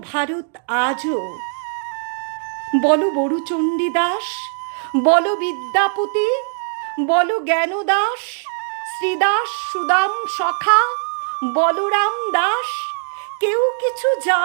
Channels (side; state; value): left; silent; digital silence